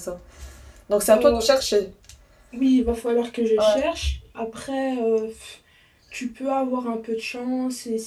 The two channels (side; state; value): both; identical; correlation 1.00